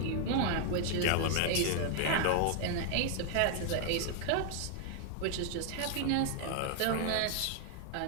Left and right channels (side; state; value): both; different; correlation 0.00